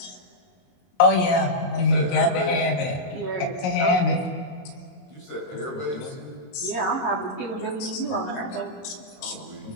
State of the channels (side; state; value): right; late; 22 ms